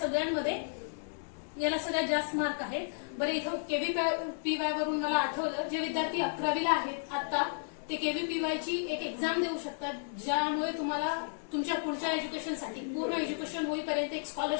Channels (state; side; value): silent; right; digital silence